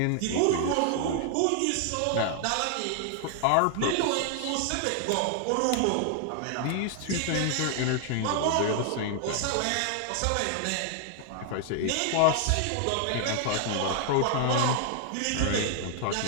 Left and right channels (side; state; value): both; different; correlation 0.00